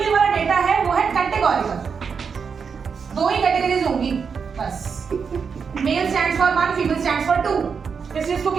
वाला डेटा है वो है कैटेगोरिकल। दो ही कैटेगरीज होंगी बस, male stands for 1, female stands for 2, इसलिए इसको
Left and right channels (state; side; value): quieter; left; 6.0 dB